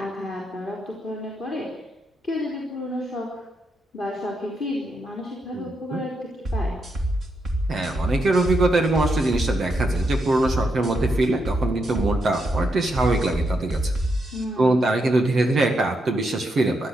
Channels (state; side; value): normal; both; correlation 0.81